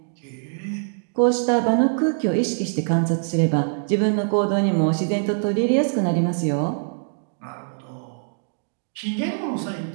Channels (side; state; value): left; silent; 63 dB below the other